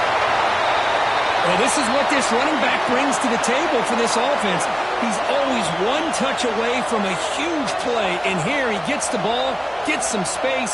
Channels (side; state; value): both; identical; correlation 1.00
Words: Well, this is what this running back brings to the table for this offense. He's always one touch away from a huge play. And here he gets the ball, gets some